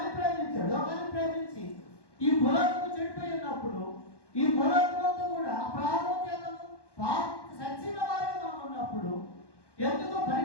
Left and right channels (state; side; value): late; right; 1.1 ms